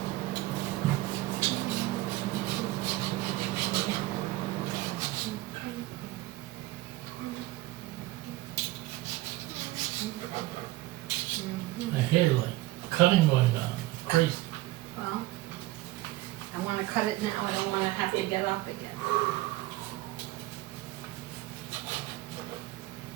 I hear like cutting going on. Crazy. Well, I wanna cut it now, I don't wanna have to get up again.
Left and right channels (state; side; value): quieter; left; 18.2 dB